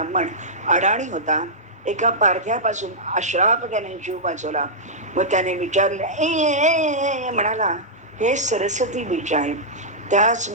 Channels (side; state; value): both; normal; correlation -0.11